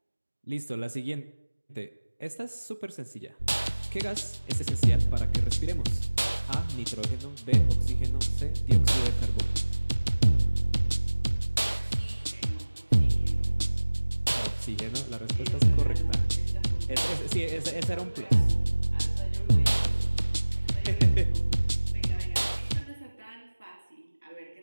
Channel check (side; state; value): both; inverted; correlation -1.00